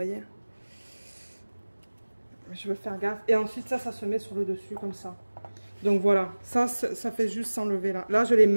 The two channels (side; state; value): both; inverted; correlation -1.00